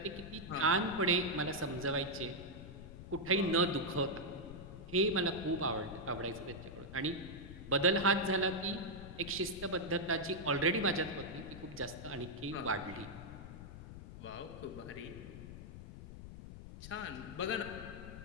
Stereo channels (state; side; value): noise; left; rumble, 12 dB below the sound